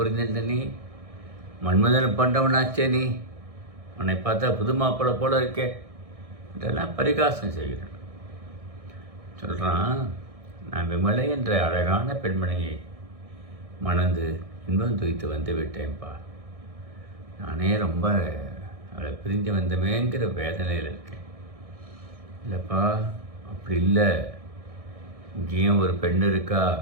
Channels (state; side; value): late; left; 1.6 ms